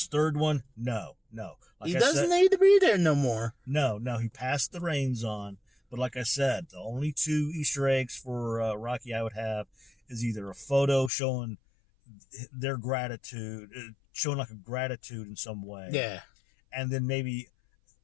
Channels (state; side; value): drops out; right; at 11.1 s